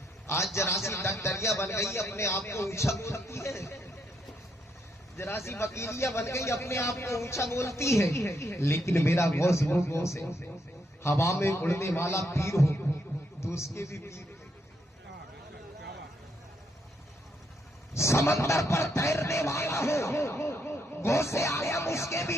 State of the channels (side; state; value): both; normal; correlation 0.76